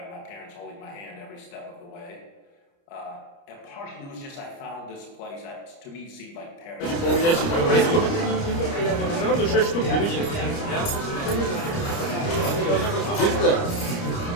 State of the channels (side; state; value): right; late; 29 ms